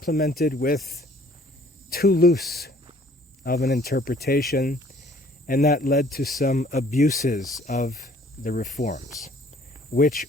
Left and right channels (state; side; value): normal; both; correlation 0.57